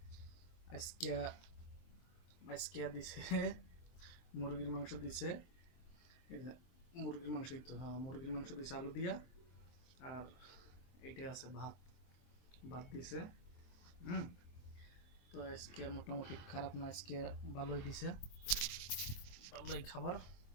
আজকে আজকে দিছে মুরগির মাংস দিছে। এই যে মুরগির মাংসই তো, হ্যাঁ মুরগির মাংস দিছে আলু দিয়া। আর এইটা আছে ভাত, ভাত দিছে। হুম। তো আজকে মোটামুটি খারাপ না, আজকে ভালোই দিছে, ভালোই খাবার।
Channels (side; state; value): right; late; 23 ms